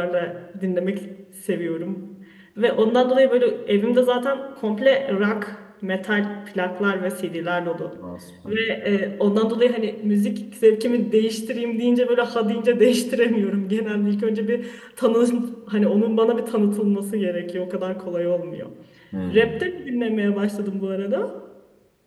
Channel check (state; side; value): identical; both; correlation 1.00